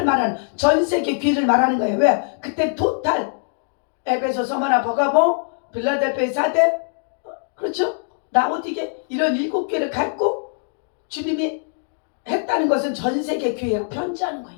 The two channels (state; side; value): silent; right; 64 dB below the other